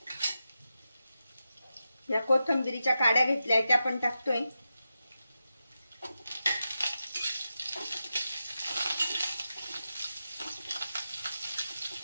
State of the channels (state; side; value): inverted; both; correlation -0.90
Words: या कोथिंबीरीच्या काड्या घेतल्या त्या पण टाकतोय.